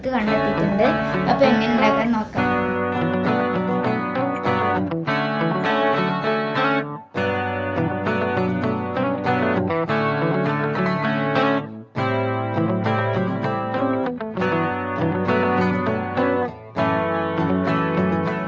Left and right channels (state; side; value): identical; both; correlation 1.00